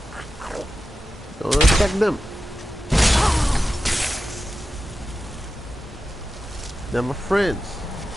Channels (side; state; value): both; normal; correlation 0.92